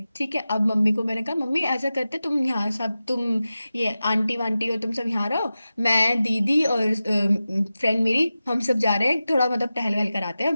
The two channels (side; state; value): both; inverted; correlation -0.94